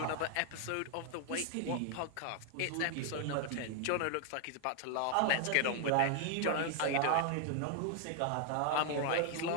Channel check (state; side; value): different; both; correlation 0.00